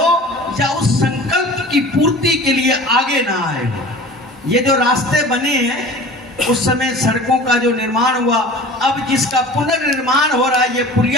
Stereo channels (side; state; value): both; normal; correlation 0.40